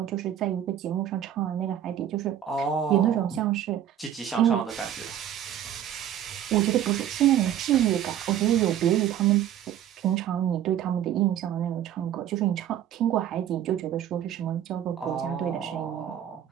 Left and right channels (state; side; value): quieter; left; 10.7 dB